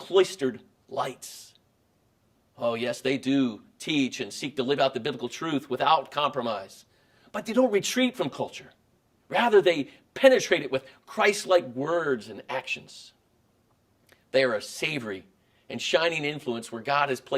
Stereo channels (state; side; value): identical; both; correlation 1.00